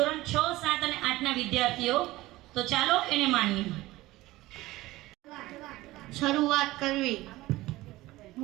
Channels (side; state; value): left; quieter; 18.2 dB